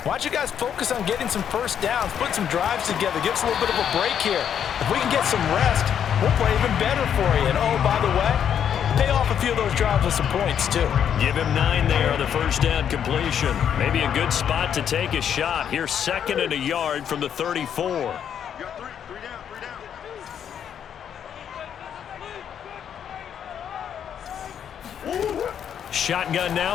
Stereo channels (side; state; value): right; quieter; 8.8 dB